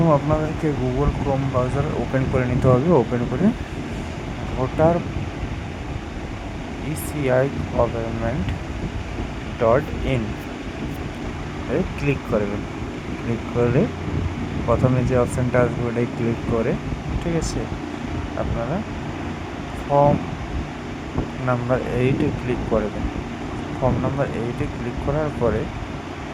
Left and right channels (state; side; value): identical; both; correlation 1.00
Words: আপনাদেরকে গুগল ক্রোম ব্রাউজার ওপেন করে নিতে হবে। ওপেন করে voter ECI government .in A click করবেন। ক্লিক করে প্রথমে যে অপশানটা আসবে ওটাই ক্লিক করে, ঠিক আছে, আপনারা ফর্ম নাম্বার 8-এ ক্লিক করবেন। ফর্ম নাম্বার 8-এ ক্লিক করার পরে